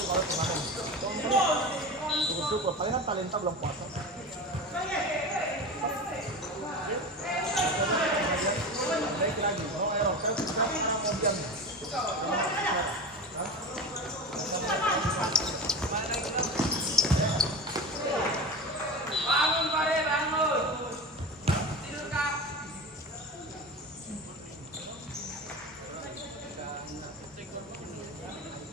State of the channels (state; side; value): normal; both; correlation 0.28